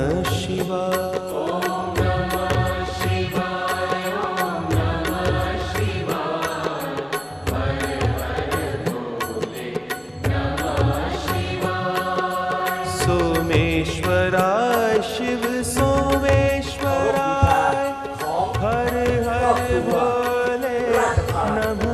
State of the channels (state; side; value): identical; both; correlation 1.00